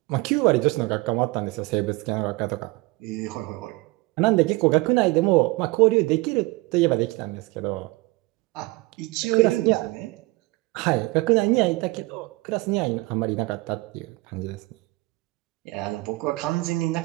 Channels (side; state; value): left; quieter; 22.8 dB